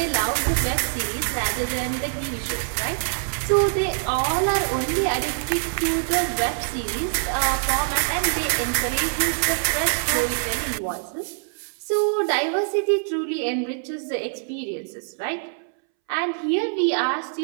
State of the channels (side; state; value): left; silent; 62 dB below the other